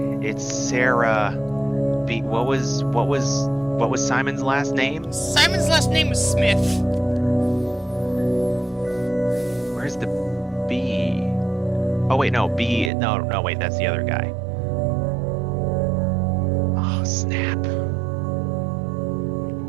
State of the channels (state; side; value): drops out; left; at 12.9 s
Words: It's Sarah B. What was Simon's last name? Simon's last name was Smith. Where's the B? Oh wait, no, B. No, wait, that's the other guy. Oh, snap.